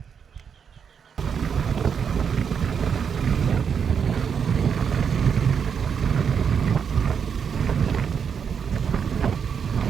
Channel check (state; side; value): quieter; left; 7.0 dB